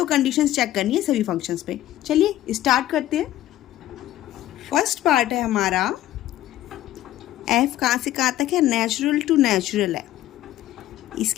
कंडीशंस चेक करनी है सभी फंक्शंस पे। चलिए स्टार्ट करते हैं। फर्स्ट पार्ट है हमारा एफ कहाँ से कहाँ तक है, नेचुरल टू नेचुरल है।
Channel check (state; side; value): quieter; right; 13.9 dB